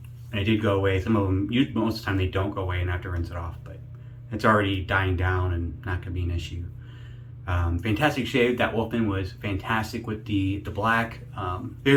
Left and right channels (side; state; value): both; identical; correlation 1.00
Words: and it did go away. Some of them, most of the time, they don't go away and I have to rinse it off. But it's already dying down and not gonna be an issue. Fantastic shave. That Wolfman was fantastic with the black.